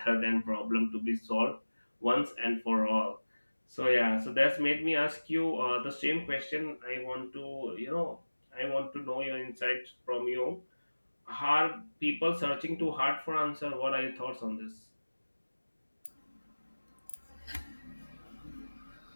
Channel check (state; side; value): inverted; both; correlation -1.00